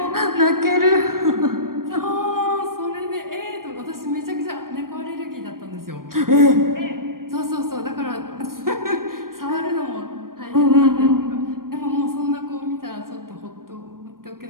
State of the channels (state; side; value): late; left; 0.91 ms